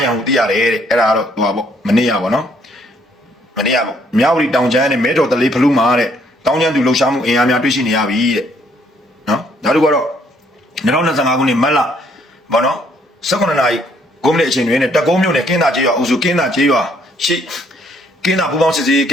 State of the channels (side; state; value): both; normal; correlation 0.67